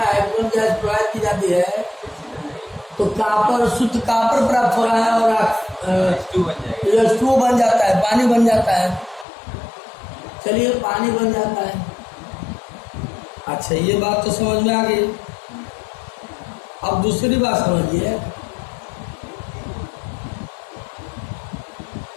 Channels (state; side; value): drops out; right; at 9.2 s